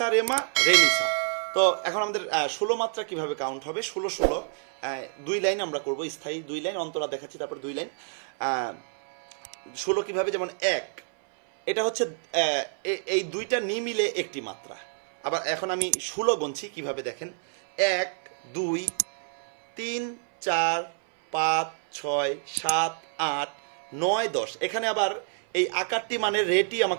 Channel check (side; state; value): left; silent; 60 dB below the other